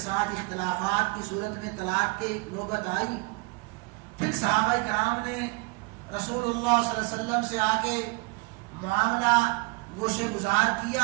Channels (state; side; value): quieter; left; 27.0 dB